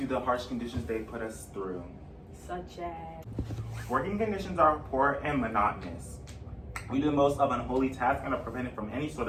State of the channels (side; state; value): both; identical; correlation 1.00